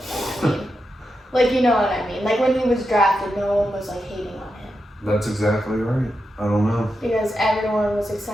Braun. Like, you know what I mean? Like, when he was drafted, no one was, like, hating on him. That's exactly right. I don't know. Because everyone was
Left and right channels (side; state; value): both; normal; correlation 0.87